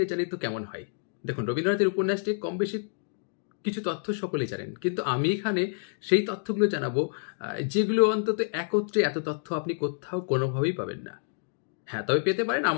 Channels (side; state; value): right; silent; digital silence